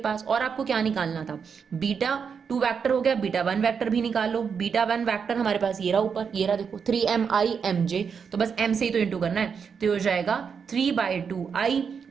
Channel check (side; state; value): left; quieter; 6.4 dB